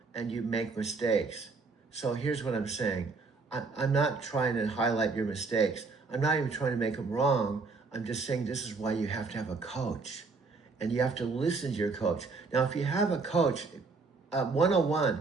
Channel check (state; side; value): quieter; left; 4.2 dB